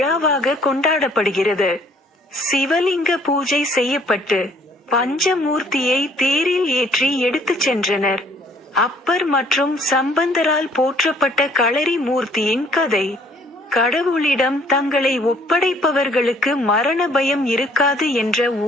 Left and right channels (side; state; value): both; normal; correlation 0.60